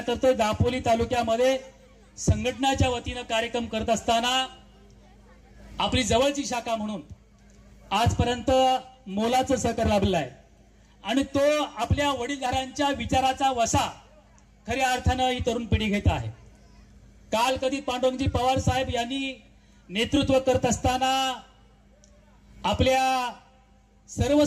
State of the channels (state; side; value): identical; both; correlation 1.00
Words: करतोय. दापोली तालुक्यामध्ये संघटनाच्या वतीनं कार्यक्रम करत असताना आपली जवळची शाखा म्हणून आजपर्यंत मोलाचं सहकार्य लाभलेलं आहे आणि तो आपल्या वडीलधाऱ्यांच्या विचाराचा वसा खऱ्या अर्थानं ही तरुण पिढी घेत आहे. काल कधी पांडुरंगजी पवार साहेब यांनी नेतृत्व करत असताना आपल्या सर्व